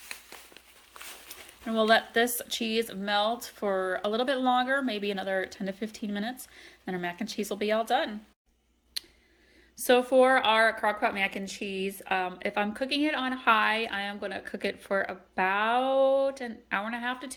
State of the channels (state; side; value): identical; both; correlation 1.00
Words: And we'll let this cheese melt for a little bit longer, maybe another 10 to 15 minutes, and our mac and cheese will be all done. So for our crock pot mac and cheese, if I'm cooking it on high, I am going to cook it for about an hour and a half to